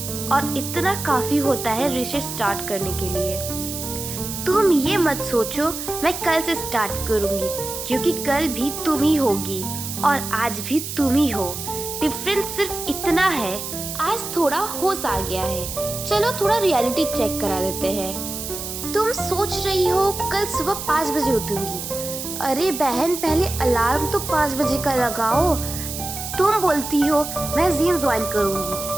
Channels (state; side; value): noise; right; hiss, 7 dB below the sound